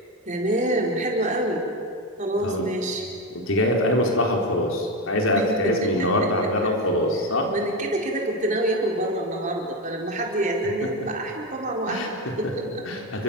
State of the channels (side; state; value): both; normal; correlation 0.15